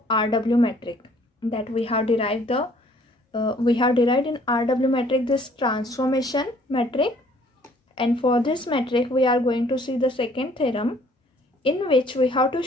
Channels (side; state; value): both; normal; correlation 0.59